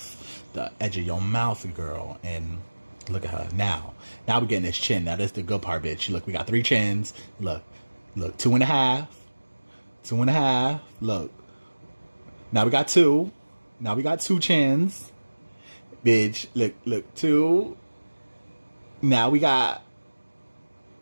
the edge of your mouth, girl. And look at her now we're getting this chin. Now that's the good part, bitch. Look, we got 3 chins. Look 2.5, look, now we got 2 chins, bitch. Look 2. Now we got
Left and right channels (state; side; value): inverted; both; correlation -1.00